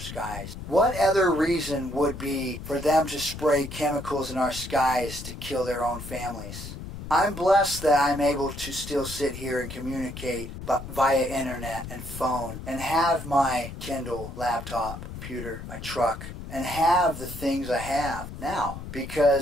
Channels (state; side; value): noise; left; rumble, 10 dB below the sound